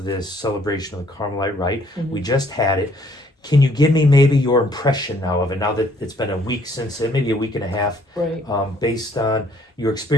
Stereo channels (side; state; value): both; normal; correlation 0.63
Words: this celebration of the Carmelite Rite. We just had it. Can you give me maybe your impression now of it, now that it's been a week since it, maybe a week and a half, Right. Based on your